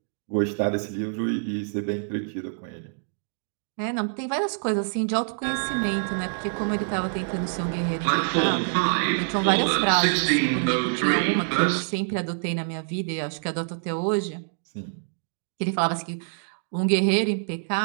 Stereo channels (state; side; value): silent; left; digital silence